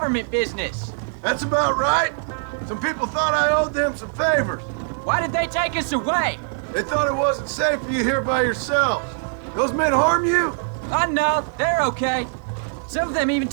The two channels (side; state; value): left; silent; digital silence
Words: business. That's about right. Some people thought I owed them some favors. Why did they take us away? They thought it wasn't safe for you here by yourselves. Those men harm you? Oh, no, they're okay. Some of them even